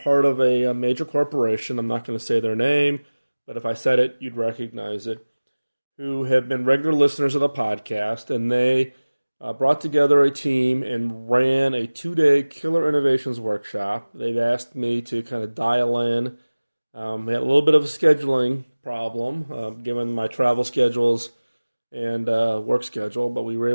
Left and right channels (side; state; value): both; inverted; correlation -1.00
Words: of a major corporation. I'm not going to say their name, but if I said it, you'd recognize it, who have been regular listeners of the podcast, and they brought together a team and ran a 2-day Killer Innovations workshop. They've asked me to kind of dial in. We had a little bit of a scheduling problem, given my travel schedules and work schedule, but we were